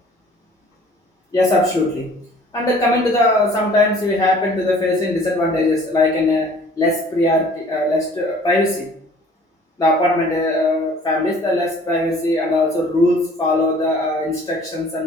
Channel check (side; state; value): both; normal; correlation 0.52